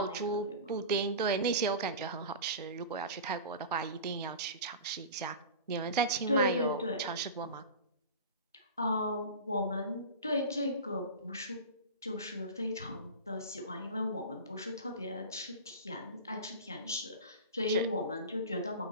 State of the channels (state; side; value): inverted; both; correlation -0.31